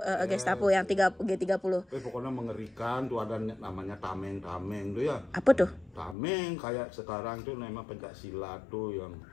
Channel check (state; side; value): drops out; right; at 6.2 s